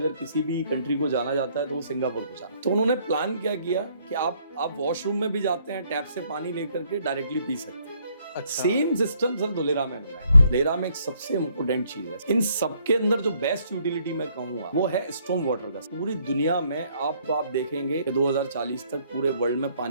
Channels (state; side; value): inverted; both; correlation -0.67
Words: किसी भी कंट्री को जाना जाता है तो वो सिंगापुर को जाना। तो उन्होंने प्लान क्या किया कि आप वॉशरूम में भी जाते हैं, टैप से पानी लेकर के डायरेक्टली पी सकते हैं। अच्छा। सेम सिस्टम सर धोलेरा में बना है। धोलेरा में एक सबसे इम्पोर्टेंट चीज है, इन सबके अंदर जो बेस्ट यूटिलिटी मैं कहूंगा वो है स्टॉर्म वाटर का। पूरी दुनिया में आप देखेंगे कि 2040 तक पूरे वर्ल्ड में